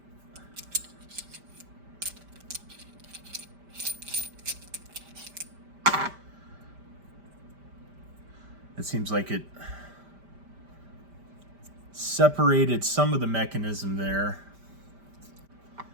It seems like it separated some of the mechanism there.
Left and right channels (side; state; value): left; late; 5.1 ms